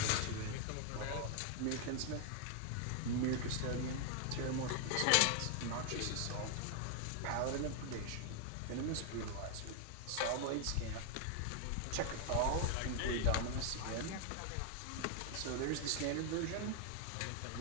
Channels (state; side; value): different; both; correlation 0.00